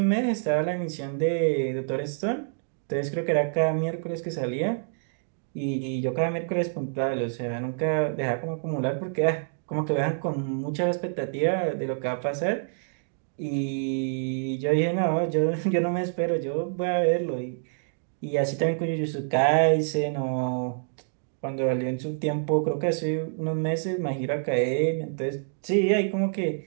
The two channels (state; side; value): silent; left; digital silence